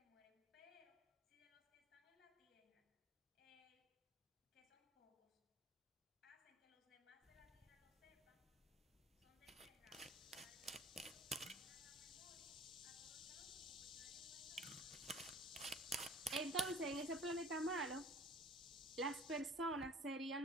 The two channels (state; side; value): normal; both; correlation 0.48